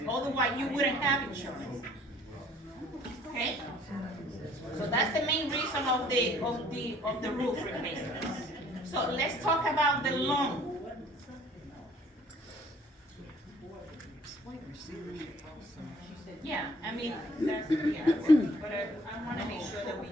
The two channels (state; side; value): normal; both; correlation 0.57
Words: Otherwise, you wouldn't have insurance. Okay? So that's the main reason of the roof replacement. So let's talk about the loan. Yeah, I mean, that's, yeah, but I wanna make sure that we